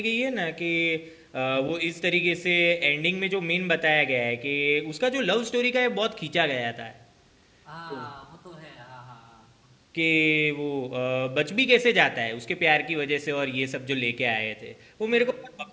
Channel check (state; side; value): identical; both; correlation 1.00